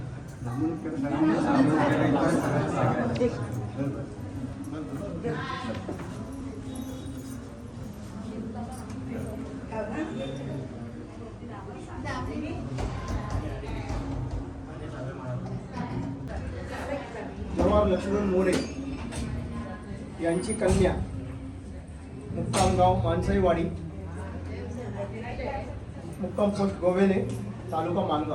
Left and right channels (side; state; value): both; identical; correlation 1.00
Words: जवाहर लक्ष्मण मोरे यांची कन्या, मुक्काम गाव माणसाईवाडी, मुक्काम पोस्ट गोवेले, तालुका